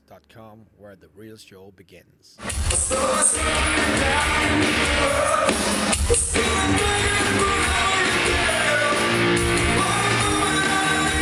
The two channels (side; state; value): both; identical; correlation 1.00